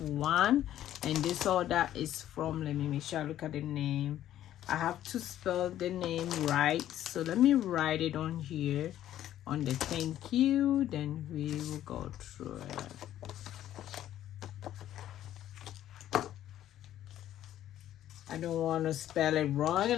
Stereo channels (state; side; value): quieter; right; 12.2 dB